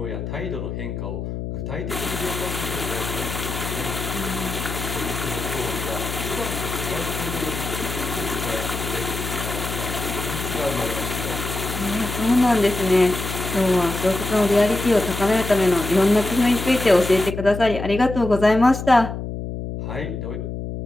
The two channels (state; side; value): noise; left; hum, 6 dB below the sound